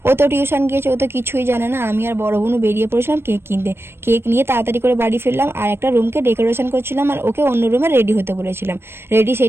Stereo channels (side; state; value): left; late; 0.12 ms